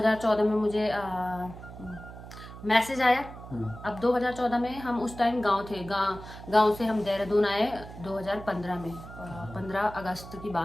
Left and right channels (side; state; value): right; noise; hum, 14 dB below the sound